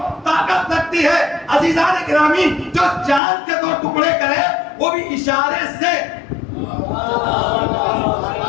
طاقت لگتی ہے۔ عزیزان گرامی، جو چاند کے 2 ٹکڑے کرے وہ بھی اشارے سے،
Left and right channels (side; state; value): right; drops out; at 3.2 s